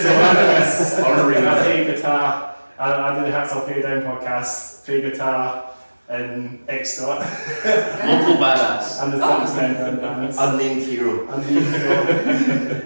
So Honorary I play guitar. I do the Hats Off Here Down podcast. Play guitar in Extort Local badass. and the 6 men in the band. Unnamed hero. And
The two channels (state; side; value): inverted; both; correlation -1.00